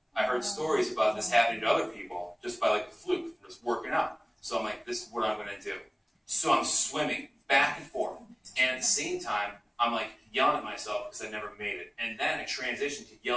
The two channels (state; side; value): identical; both; correlation 1.00